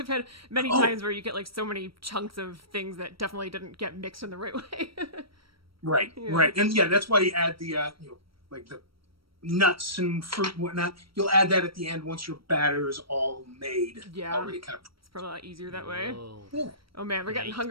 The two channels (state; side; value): late; left; 0.75 ms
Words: had many times where you get like so many chunks of things that definitely didn't get mixed in the right way. Right, and that's why you add the like the nuts and fruit and whatnot. You'll add that at the end once your batter is all made. Yeah, already kind of. It's probably a lot easier that way. Yeah. Oh man, we're getting